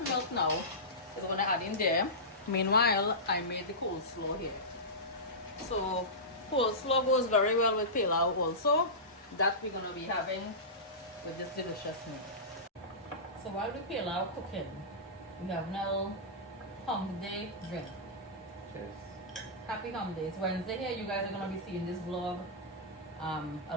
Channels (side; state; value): both; normal; correlation -0.17